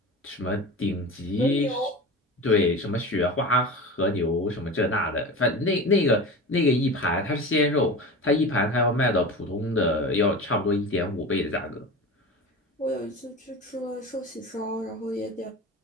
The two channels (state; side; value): normal; both; correlation 0.31